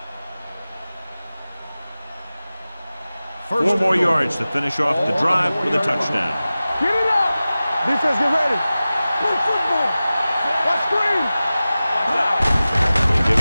Four more yards to finish off the drive with a touchdown. Get it up. Defense, get ready. Play football. Watch screen. They give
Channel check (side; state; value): both; inverted; correlation -0.96